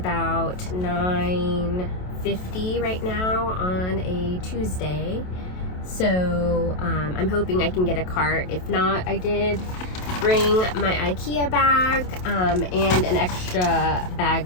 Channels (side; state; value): right; late; 27 ms